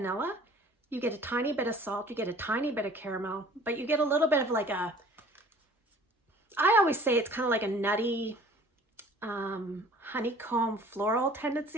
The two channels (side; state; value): both; normal; correlation 0.50